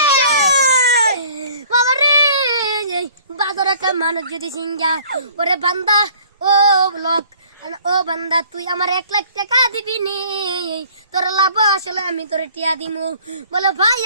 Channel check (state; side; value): inverted; both; correlation -0.53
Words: বাবা রে বাজার একটা মানুষ যদি সিঙ্গা, ওরে বান্দা ও লোক, ও বান্দা তুই আমার 1 লাখ টাকা দিবি নি, তোর লাভ আসলে আমি তোরে টিয়া দিমু। বলে ভাই